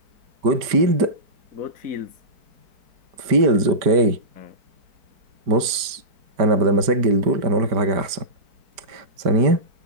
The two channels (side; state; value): left; late; 5.0 ms